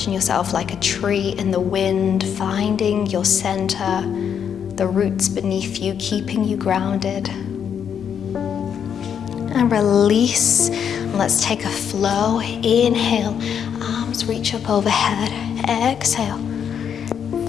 yourself like a tree in the wind, finding your center, the roots beneath you, keeping you grounded. And release. Let's take a flow. Inhale, arms reach up overhead. Exhale,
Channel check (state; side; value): quieter; right; 8.0 dB